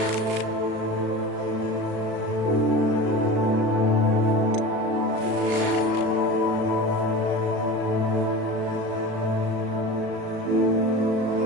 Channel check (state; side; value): late; left; 36 ms